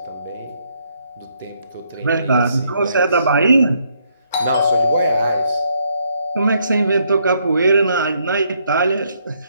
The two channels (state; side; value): inverted; both; correlation -0.72